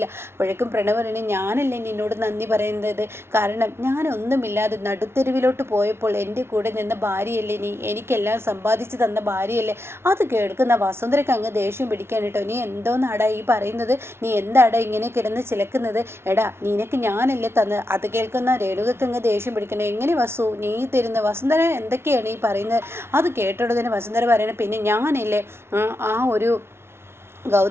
അപ്പോഴേക്കും പ്രണവ് പറയണേ, ഞാനല്ലേ നിന്നോട് നന്ദി പറയുന്നത്, കാരണം ഞാനൊന്നുമില്ലാതെ നടുത്തെരുവിലോട്ട് പോയപ്പോൾ എൻ്റെ കൂടെ നിന്ന ഭാര്യയല്ലേ നീ, എനിക്കെല്ലാം സമ്പാദിച്ചു തന്ന ഭാര്യയല്ലേ? അത് കേൾക്കുന്ന വസുന്ധരയ്ക്ക് അങ്ങ് ദേഷ്യം പിടിക്കാൻ കേട്ടോ. നീ എന്തോന്നാടാ ഈ പറയുന്നത്? നീ എന്താടാ ഇങ്ങനെ കിടന്ന് ചിലക്കുന്നത്? എടാ, നിനക്ക് ഞാനല്ലേ തന്നത്? അത് കേൾക്കുന്ന രേണുകയ്ക്ക് അങ്ങ് ദേഷ്യം പിടിക്കണം. എങ്ങനെ വസു നീ തരുന്ന? വസുന്ധര എന്തൊക്കെയാണ് ഈ പറയുന്നത്? അത് കേട്ടോടനെ വസുന്ധര പറയണേ, പിന്നെ ഞാനല്ലേ ആ ഒരു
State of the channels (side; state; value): left; late; 0.12 ms